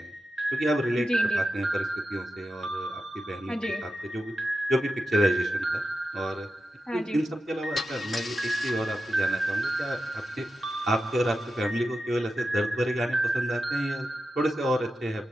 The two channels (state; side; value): normal; both; correlation 0.91